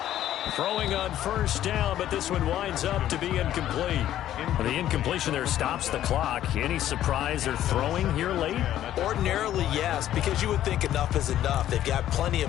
Throwing on first down, but this one winds up to be incomplete. The incompletion there stops the clock. Any surprise they're throwing here late? Ordinarily, yes, because you would think enough is enough. They've got plenty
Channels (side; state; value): right; quieter; 12.2 dB